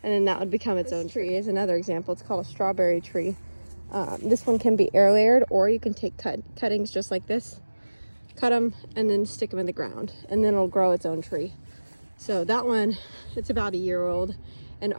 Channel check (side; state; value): both; inverted; correlation -1.00